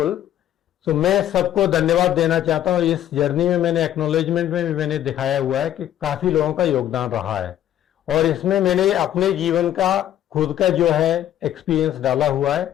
So मैं सबको धन्यवाद देना चाहता हूँ. इस जर्नी में मैंने एक्नॉलेजमेंट में भी मैंने दिखाया हुआ है कि काफी लोगों का योगदान रहा है, और इसमें मैंने अपने जीवन का खुद का जो है एक्सपीरियंस डाला हुआ है,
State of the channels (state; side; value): quieter; right; 11.7 dB